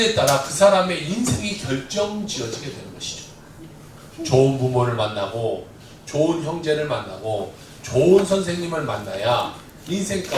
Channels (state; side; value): identical; both; correlation 1.00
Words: 따라 그 사람의 인생이 결정지어지게 되는 것이죠. 좋은 부모를 만나고 좋은 형제를 만나고 좋은 선생님을 만나야 인생